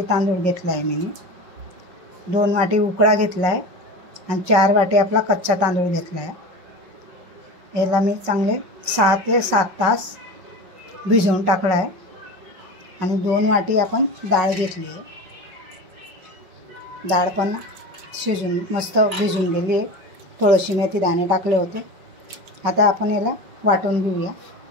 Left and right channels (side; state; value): left; late; 5.4 ms